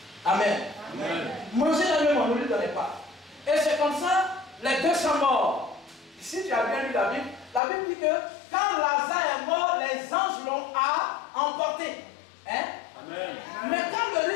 Amen. Amen. Manger la même, on ne lui donnait pas. Et c'est comme ça, les deux sont morts. Si tu as bien lu la Bible dit que quand Lazare est mort, les anges l'ont emporté. Hein? Amen. Mais quand le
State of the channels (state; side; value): drops out; right; at 7.6 s